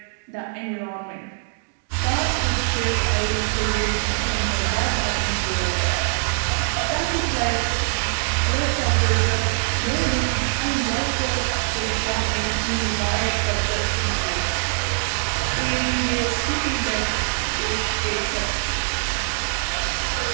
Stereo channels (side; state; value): left; silent; digital silence